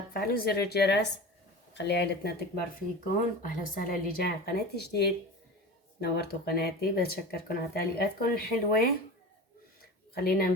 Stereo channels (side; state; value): both; normal; correlation 0.31